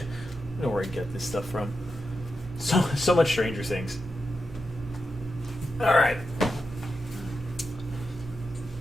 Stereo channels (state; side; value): normal; both; correlation 0.88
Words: know where I get this stuff from. So much Stranger Things. All right.